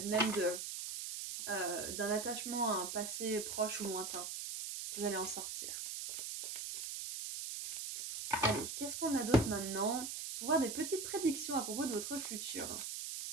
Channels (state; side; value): noise; right; hiss, 5 dB below the sound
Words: même d'un attachement à un passé proche ou lointain. Vous allez en sortir. Allez, qu'est-ce qu'on a d'autre maintenant? Pour voir des petites prédictions à propos de votre futur.